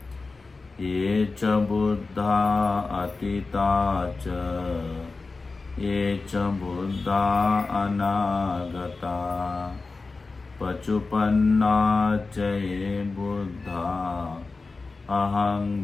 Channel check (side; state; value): right; quieter; 3.8 dB